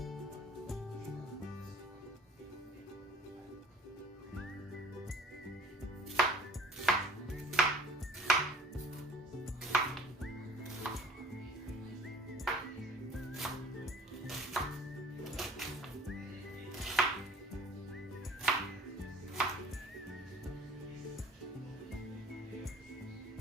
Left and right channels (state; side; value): normal; both; correlation 0.53